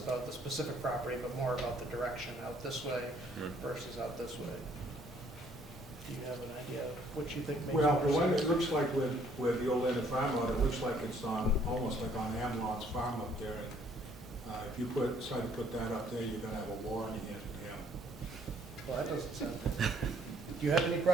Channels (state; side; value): normal; both; correlation 0.63